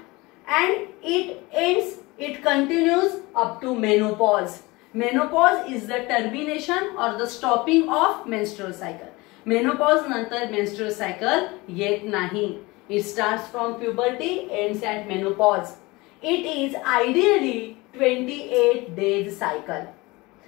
and it continues up to menopause. Menopause is the termination or the stopping of menstrual cycle. Menopause नंतर menstrual cycle येत नाही. It starts from puberty, ends at menopause. It is ideally 28 days cycle.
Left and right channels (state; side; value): quieter; right; 22.9 dB